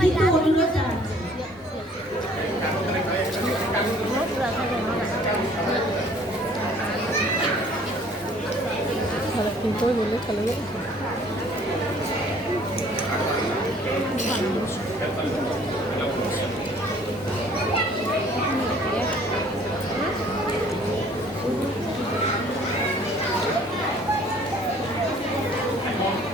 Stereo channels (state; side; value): normal; both; correlation 0.56